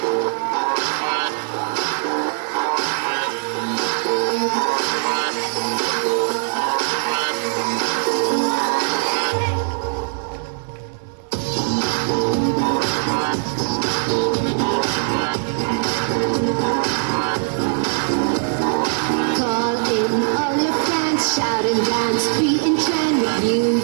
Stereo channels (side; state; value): left; silent; digital silence